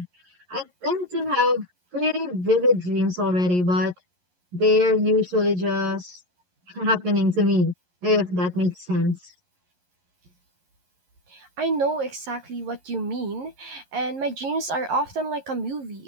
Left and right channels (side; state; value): left; late; 11 ms